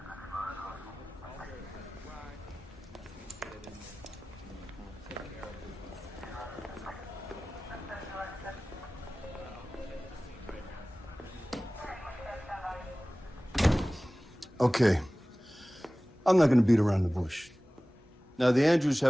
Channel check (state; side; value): normal; both; correlation 0.98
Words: Okay. I'm not going to beat around the bush. Now, the Andrews